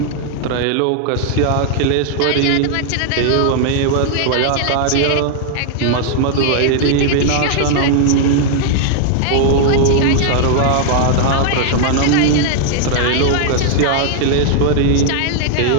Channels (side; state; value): both; different; correlation 0.00